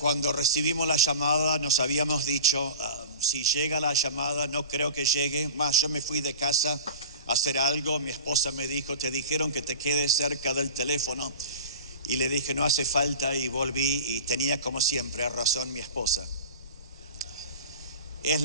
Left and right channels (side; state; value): both; inverted; correlation -0.35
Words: recibimos la llamada, nos habíamos dicho, si llega la llamada, no creo que llegue. Más, yo me fui de casa a hacer algo, mi esposa me dijo, te dijeron que te quedes cerca del teléfono. Y le dije, no hace falta, y volví y tenía como siempre razón mi esposa. Es